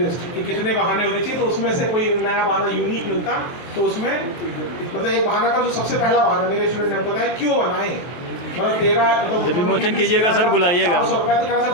कि कितने बहाने होने चाहिए, तो उसमें से कोई नया बहाना यूनिक मिलता, तो उसमें मतलब एक बहाना का जो सबसे पहला बहाना मेरे स्टूडेंट ने बताया, क्यों बनाएं, मतलब 13 जब विमोचन कीजिएगा सर, बुलाइएगा। 400 रुपये तो कह रहा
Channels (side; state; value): right; late; 23 ms